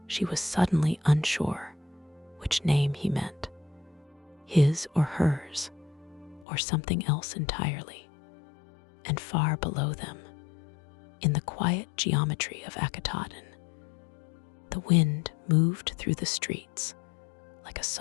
she was suddenly unsure which name he meant, his or hers, or something else entirely. And far below them, in the quiet geometry of Akhetaten, the wind moved through the streets like a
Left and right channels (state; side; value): drops out; right; at 6.5 s